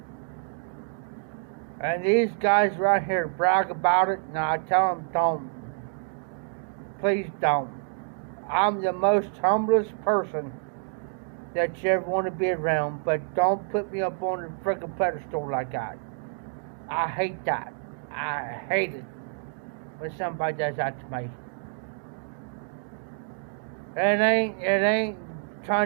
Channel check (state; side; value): silent; left; 60 dB below the other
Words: And these guys right here brag about it, and I tell them don't. Please don't. I'm the most humblest person that you ever want to be around, but don't put me up on a freaking pedestal like that. I hate that. I hate it when somebody does that to me. It ain't